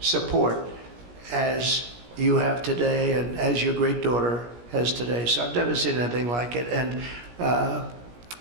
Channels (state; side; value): late; left; 17 ms